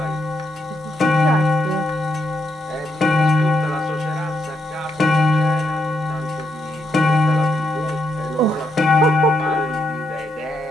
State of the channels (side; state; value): both; normal; correlation 0.80